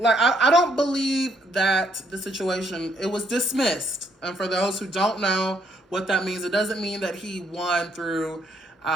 I don't believe that the situation, it was dismissed. And for those who don't know what that means, it doesn't mean that he won through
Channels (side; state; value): both; normal; correlation 0.70